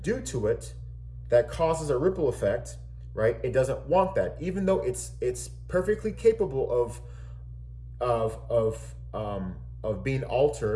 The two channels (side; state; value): both; identical; correlation 1.00